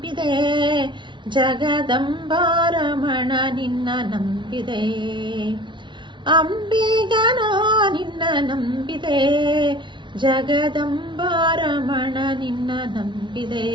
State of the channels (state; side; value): late; left; 0.23 ms